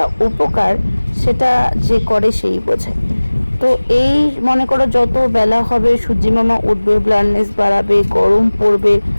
উপকার সেটা যে করে সেই বোঝে। তো এই মনে করো যত বেলা হবে সূর্যিমামা উঠবে, ব্লাইন্ডনেস বাড়াবে, গরম পড়বে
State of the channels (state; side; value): inverted; both; correlation -1.00